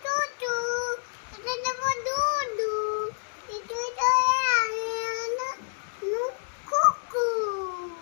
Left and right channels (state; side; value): silent; right; digital silence